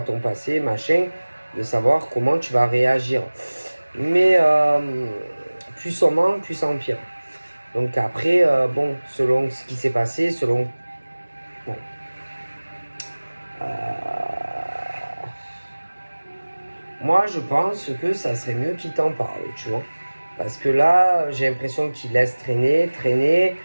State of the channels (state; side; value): inverted; both; correlation -1.00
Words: ton passé, machin, de savoir comment tu vas réagir. Mais plus on ment, plus ça empire. Donc après, bon, selon ce qui s'est passé, selon... Bon. Moi, je pense que ça serait mieux qu'il t'en parle, tu vois. Parce que là, j'ai l'impression qu'il laisse traîner.